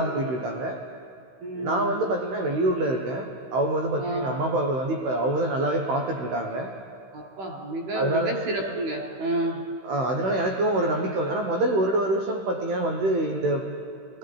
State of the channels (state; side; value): late; left; 16 ms